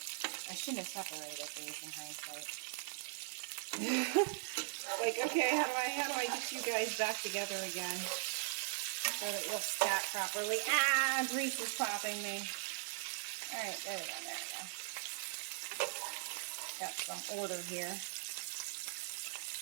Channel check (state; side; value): silent; left; 51 dB below the other